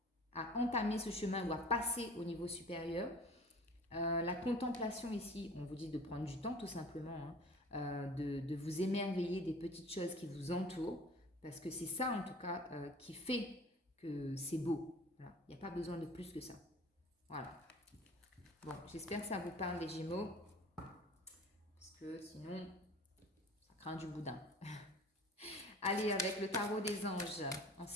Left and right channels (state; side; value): normal; both; correlation 0.44